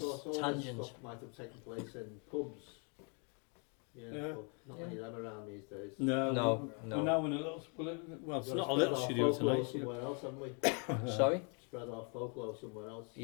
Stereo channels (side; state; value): right; quieter; 37.4 dB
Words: Of course, all Tangent. this stuff might have taken place in pubs. Yeah. Yeah. But not many of them around these days. No, No, we're no. now in a little, well, it's We've got not to a little spread our studio folklore tonight. somewhere else, haven't we? Sorry? Spread our folklore somewhere else.